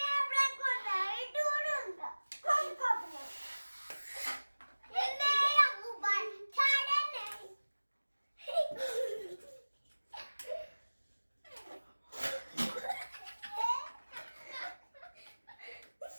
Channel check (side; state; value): both; inverted; correlation -1.00